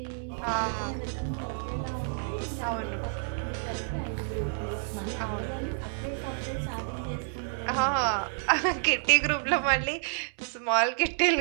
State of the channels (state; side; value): silent; left; digital silence